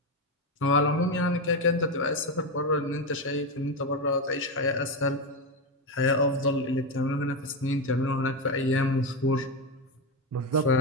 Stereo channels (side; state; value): both; normal; correlation 0.12